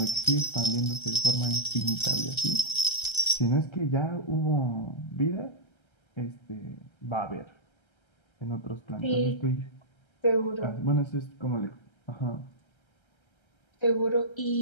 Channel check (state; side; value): late; right; 1.3 ms